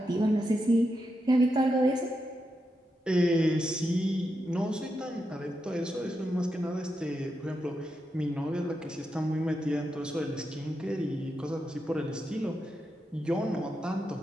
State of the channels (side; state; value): both; normal; correlation 0.86